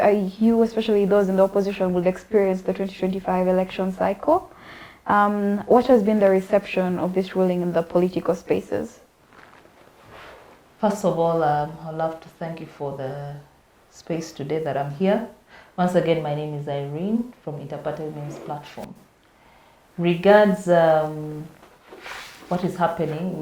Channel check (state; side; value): identical; both; correlation 1.00